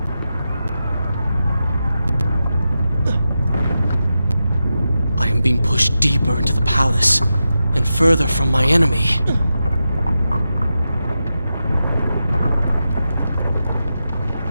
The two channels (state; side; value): inverted; both; correlation -0.90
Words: I am being pushed deeper into the palace, and further from my enemy.